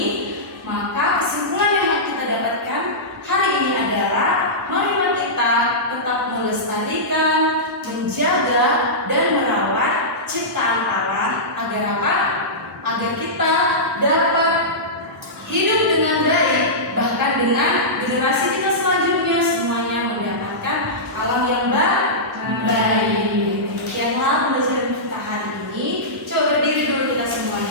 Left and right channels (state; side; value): normal; both; correlation -0.15